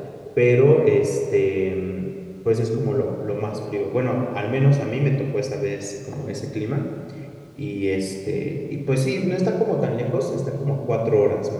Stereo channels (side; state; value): both; identical; correlation 1.00